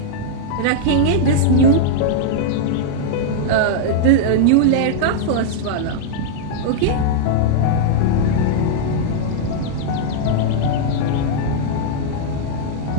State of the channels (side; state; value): both; different; correlation -0.01